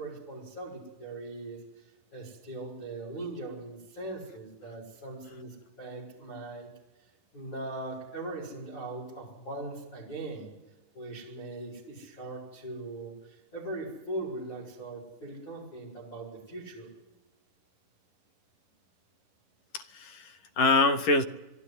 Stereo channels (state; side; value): late; right; 11 ms